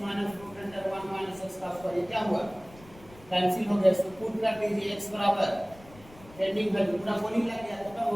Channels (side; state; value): left; noise; rumble, 22 dB below the sound